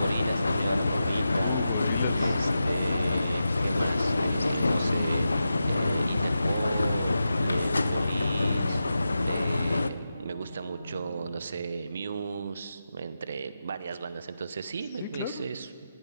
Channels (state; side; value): inverted; both; correlation -0.90